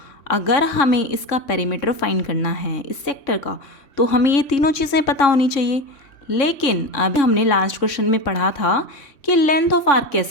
अगर हमें इसका पेरीमीटर फाइंड करना है इस सेक्टर का, तो हमें ये तीनों चीज़ें पता होनी चाहिए। लेकिन अभी हमने लास्ट क्वेश्चन में पढ़ा था कि लेंथ ऑफ आर्क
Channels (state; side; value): late; right; 3.6 ms